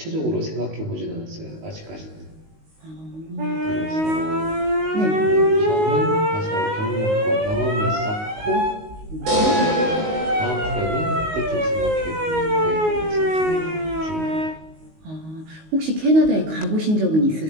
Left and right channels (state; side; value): late; left; 19 ms